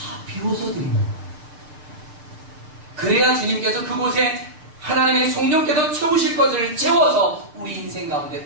비워서 드리는 거예요. 그래야 주님께서 그곳에 하나님의 성령께서 채우실 것을 채워서 우리 인생 가운데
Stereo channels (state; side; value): late; left; 6.7 ms